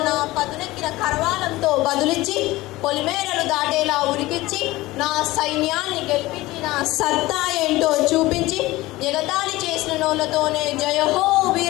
నా పదునెక్కిన కరవాలంతో బదులిచ్చి పొలిమేరలు దాటేలా ఉరికిచ్చి నా సైన్యాన్ని గెలిపించి నా సత్తా ఏంటో చూపించి ఎగతాళి చేసిన నోళ్లతోనే జయహో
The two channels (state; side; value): quieter; right; 18.8 dB